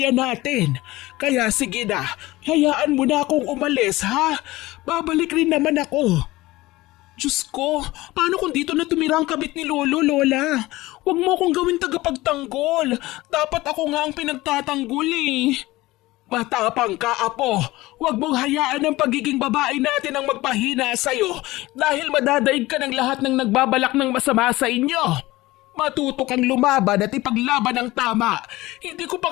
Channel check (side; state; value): right; quieter; 18.9 dB